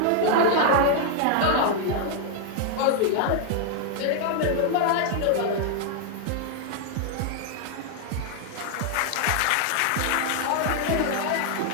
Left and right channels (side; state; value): both; different; correlation 0.00